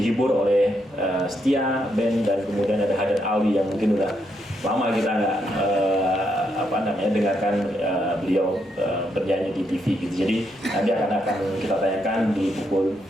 oleh Setia Band, dan kemudian ada Hadan Alwi yang mungkin udah lama kita nggak dengarkan beliau bernyanyi di TV gitu. Jadi nanti akan kita tayangkan di pukul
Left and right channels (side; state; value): both; normal; correlation 0.78